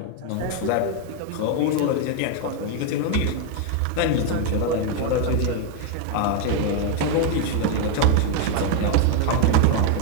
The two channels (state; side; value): different; both; correlation 0.01